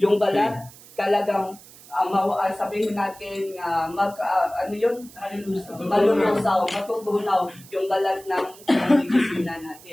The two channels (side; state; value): right; noise; hiss, 21 dB below the sound